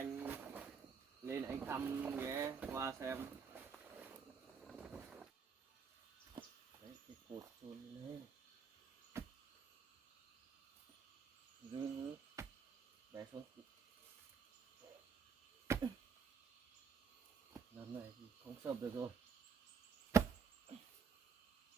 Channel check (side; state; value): left; quieter; 6.0 dB